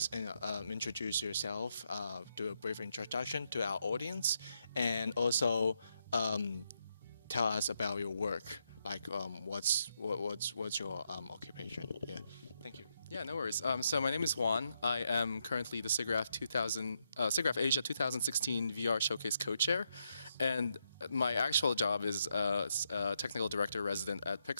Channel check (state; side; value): inverted; both; correlation -0.80